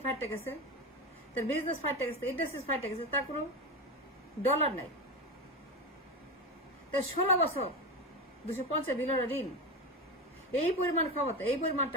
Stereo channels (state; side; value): normal; both; correlation 0.19